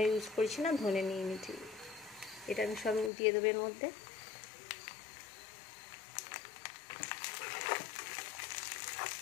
ইউজ করছি না, ধনে নিয়ে নিচ্ছি। এটা আমি সব দিয়ে দেবো এর মধ্যে।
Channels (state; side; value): drops out; right; at 3.1 s